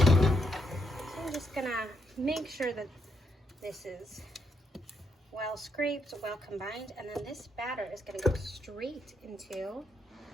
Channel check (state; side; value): normal; both; correlation 0.78